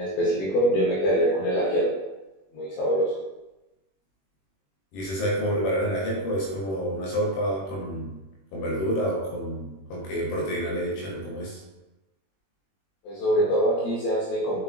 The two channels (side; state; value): right; late; 21 ms